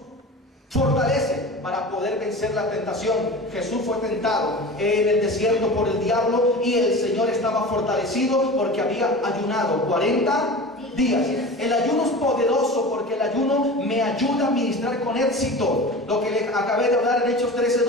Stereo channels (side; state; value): both; normal; correlation 0.34